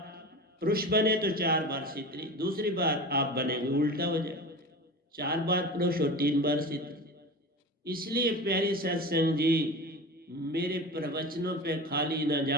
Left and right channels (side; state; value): both; normal; correlation 0.31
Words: पुरुष बने तो 4 बार स्त्री, दूसरी बार आप बनेंगे उल्टा हो जाए, 4 बार पुरुष और 3 बार स्त्री। इसलिए प्यारी सत्संग जी, मेरे प्रवचनों पे खाली ना